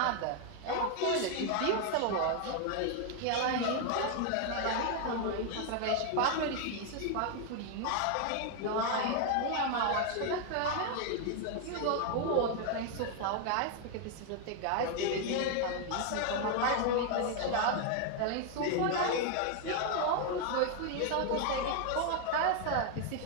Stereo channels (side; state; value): both; different; correlation 0.01